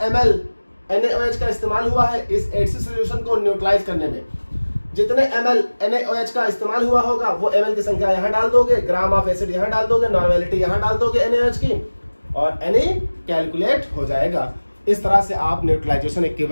ml NaOH का इस्तेमाल हुआ है इस एसिड सोल्यूशन को न्यूट्रलाइज करने में। जितने ml NaOH का इस्तेमाल हुआ होगा वो ml की संख्या यहां डाल दोगे, ग्राम ऑफ एसिड यहां डाल दोगे, नॉर्मेलिटी यहां डाल दोगे NaOH की और Na कैलकुलेट हो जाएगा। इस तरह से आप न्यूट्रलाइजेशन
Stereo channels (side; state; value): both; inverted; correlation -1.00